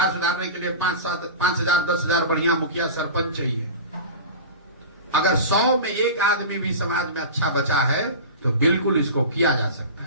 सुधारने के लिए 5,000 10,000 बढ़िया मुखिया सरपंच चाहिए। अगर 100 में 1 आदमी भी समाज में अच्छा बचा है तो बिल्कुल इसको किया जा सकता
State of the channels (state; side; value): inverted; both; correlation -0.31